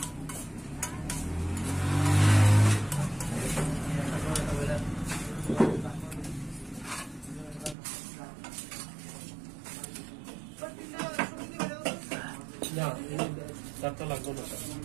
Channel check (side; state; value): left; drops out; at 7.8 s